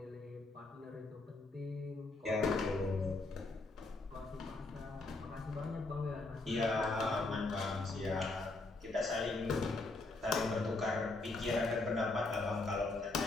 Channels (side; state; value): right; quieter; 3.2 dB